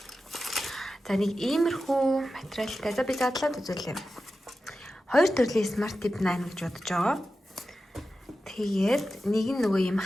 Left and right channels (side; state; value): both; normal; correlation 0.93